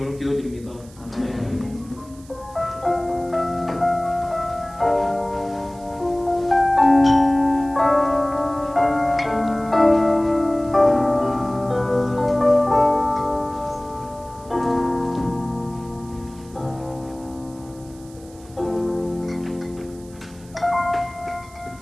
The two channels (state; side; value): noise; right; hiss, 24 dB below the sound